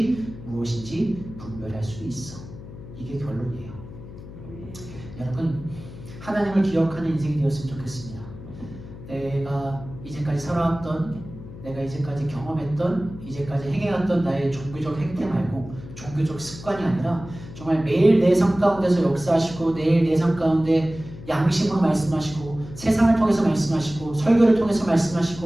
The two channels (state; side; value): noise; left; hum, 14 dB below the sound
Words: 무엇인지 분별할 수 있어. 이게 결론이에요. 여러분, 하나님을 기억하는 인생이 되었으면 좋겠습니다. 내가 이제까지 살아왔던, 내가 이제까지 경험했던, 이제까지 행해왔던 나의 종교적 행태 말고 종교적 습관이 아니라 정말 매일 내 삶 가운데서 역사하시고 매일 내 삶 가운데 양심으로 말씀하시고 세상을 통해서 말씀하시고 설교를 통해서